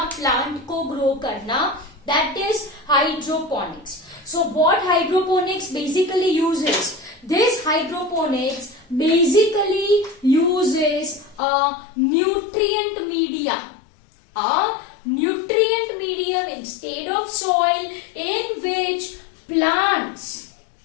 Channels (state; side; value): drops out; right; at 11.4 s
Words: plant को grow करना, that is hydroponics. So what hydroponics basically uses? This hydroponics basically uses a nutrient medium. A nutrient medium instead of soil, in which plants